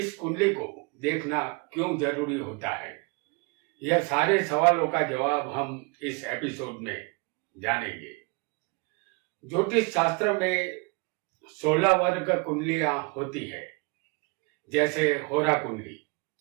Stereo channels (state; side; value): quieter; left; 30.1 dB